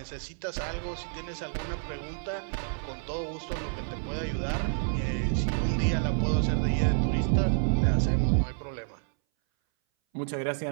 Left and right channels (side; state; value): left; silent; 58 dB below the other